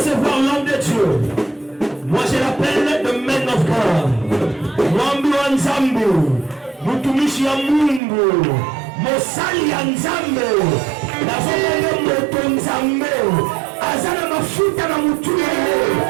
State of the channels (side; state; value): left; drops out; at 8.0 s